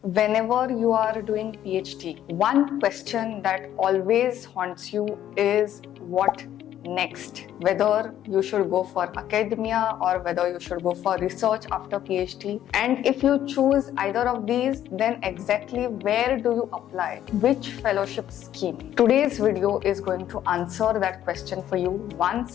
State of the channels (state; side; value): quieter; right; 11.5 dB